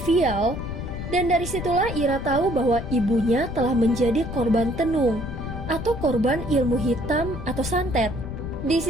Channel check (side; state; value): left; noise; rumble, 7 dB below the sound